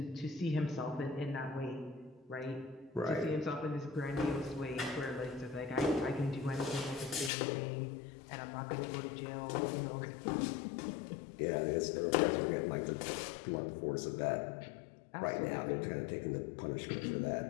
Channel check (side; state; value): right; drops out; at 7.3 s